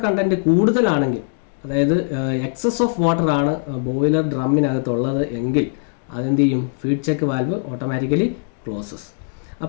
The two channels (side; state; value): right; silent; digital silence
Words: കണ്ടൻറ്റ് കൂടുതലാണെങ്കിൽ, അതായത് എക്സസ് ഓഫ് വാട്ടർ ആണ് ബോയിലർ ഡ്രമ്മിനകത്തുള്ളത് എങ്കിൽ അതെന്ത് ചെയ്യും? Feed check valve automatically closes.